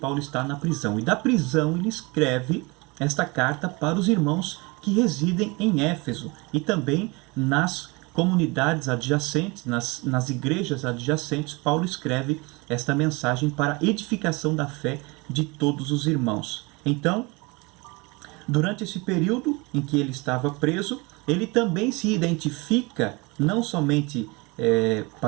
está na prisão. E da prisão ele escreve esta carta para os irmãos que residem em Éfeso e também nas comunidades adjacentes, nas igrejas adjacentes. Paulo escreve esta mensagem para a edificação da fé de todos os irmãos. Então, durante esse período em que ele estava preso, ele também se identifica, não somente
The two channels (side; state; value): left; quieter; 26.4 dB